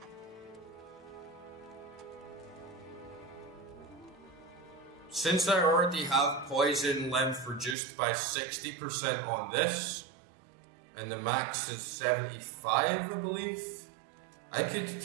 Since I already have poison length reduced by 60% on this, and the max is 75, I believe, I could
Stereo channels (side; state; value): left; drops out; at 7.8 s